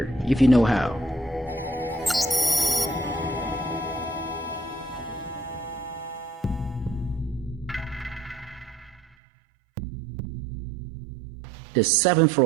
if you know how. The 7th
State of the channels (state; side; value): drops out; left; at 9.2 s